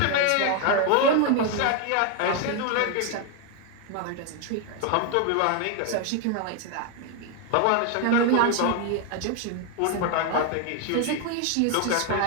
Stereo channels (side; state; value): both; different; correlation 0.01